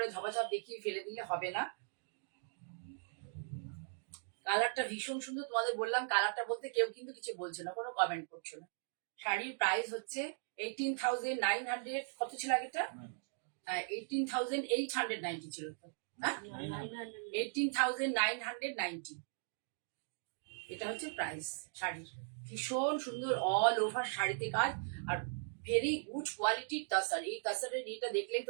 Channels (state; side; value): silent; left; digital silence